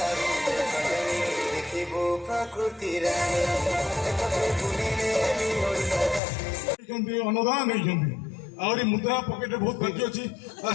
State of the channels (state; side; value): drops out; right; at 6.2 s